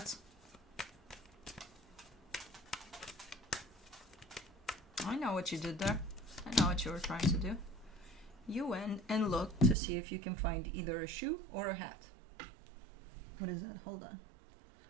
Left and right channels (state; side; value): drops out; left; at 9.8 s